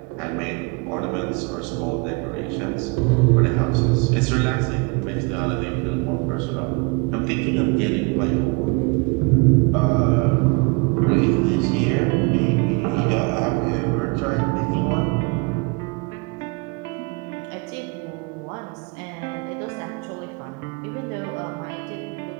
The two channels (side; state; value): left; quieter; 30.0 dB